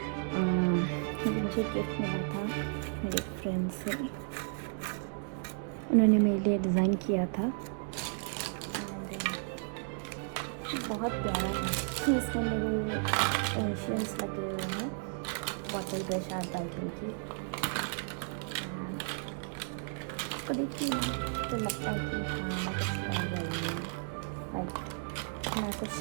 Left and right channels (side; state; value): left; silent; 55 dB below the other